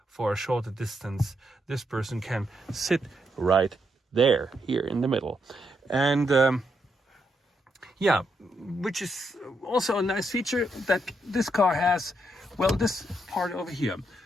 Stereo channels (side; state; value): both; normal; correlation 0.80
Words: for a shorter distance. This person can sit right there, here in the middle. And which is also a nice feature that this car has. Well, this part over here.